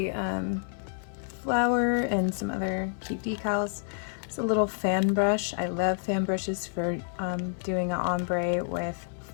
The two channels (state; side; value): silent; right; 59 dB below the other